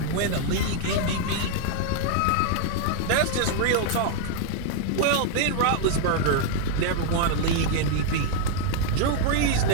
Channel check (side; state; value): both; different; correlation 0.00